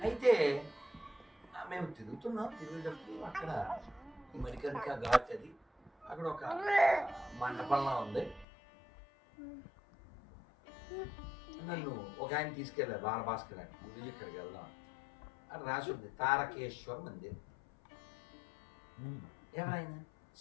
అయితే మేము తిరుగుేటప్పుడు అక్కడ మరికరిక ఘాట్ అది, అక్కడ ఒక మండపంలా ఉంది. నన్ను ఒక ఆయన తీసుకెళ్ళారు, బాలభాస్కర్ అని. గురించి ఇక్కడికి వెళ్దాం అని రాసి ఉంది, తారకేశ్వర్ మందిర్. ఎవరైనా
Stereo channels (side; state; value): right; drops out; at 8.5 s